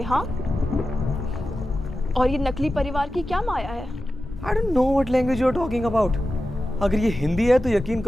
हाँ, और ये नकली परिवार की क्या माया है? I don't know what language you are talking about. अगर ये हिंदी है तो यकीन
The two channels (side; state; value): both; normal; correlation 0.93